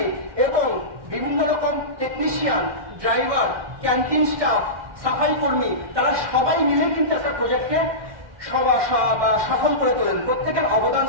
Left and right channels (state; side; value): late; left; 1.2 ms